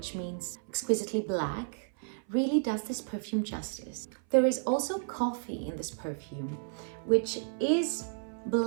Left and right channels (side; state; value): left; silent; 56 dB below the other